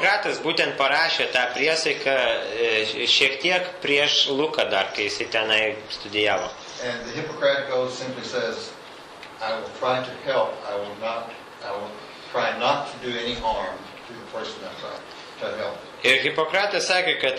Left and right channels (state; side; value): identical; both; correlation 1.00